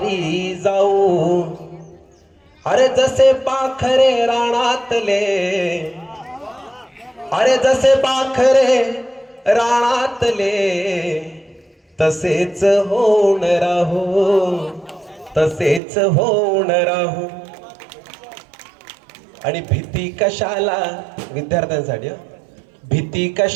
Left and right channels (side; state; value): left; drops out; at 15.8 s